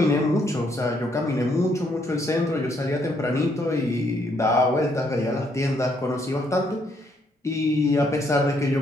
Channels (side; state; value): both; normal; correlation 0.71